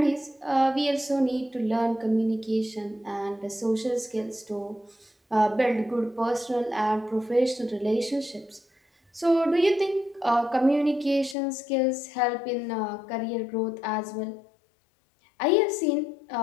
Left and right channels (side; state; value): right; drops out; at 11.4 s